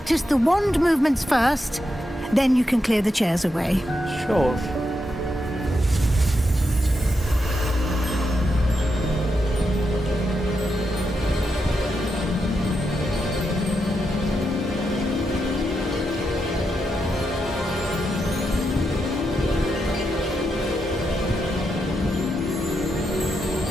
the wand movements first, then you can clear the chairs away. Sure.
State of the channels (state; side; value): normal; both; correlation 0.85